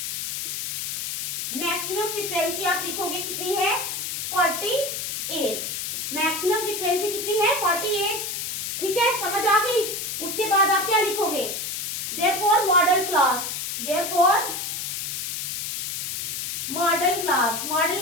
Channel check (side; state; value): left; noise; hiss, 3 dB below the sound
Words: आप लिखोगे कितनी है 48। मैक्सिमम फ्रीक्वेंसी कितनी है 48। ठीक है, समझ आ गई? उसके बाद आप क्या लिखोगे, therefore model class. Therefore model class